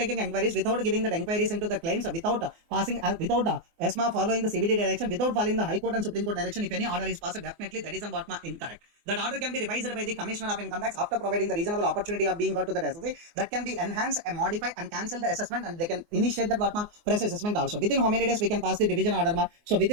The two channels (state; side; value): late; left; 24 ms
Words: inquiries, without giving the inquiries into the claims, without passing, without ESMA following the CBD direction, without following the High Court and Supreme Court direction? If any order is passed, definitely that is what incorrect. That order can be revised by the Commissioner of Income Tax after providing the reasonable opportunity of being got to the SSC. That can be enhanced and modify and cancel the assessment, and they can initiate that what fresh assessment also. Within how many days we can pass the division order ma? So